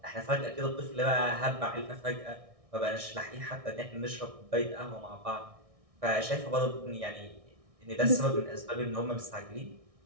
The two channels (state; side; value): late; left; 1.6 ms